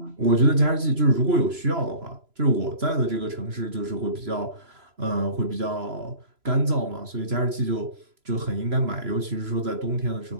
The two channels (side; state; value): left; late; 3.0 ms